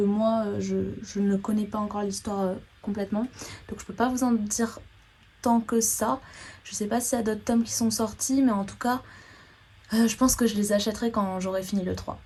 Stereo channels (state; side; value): identical; both; correlation 1.00